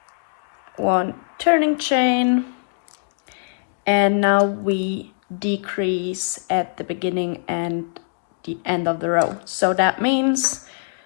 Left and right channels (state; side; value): silent; right; digital silence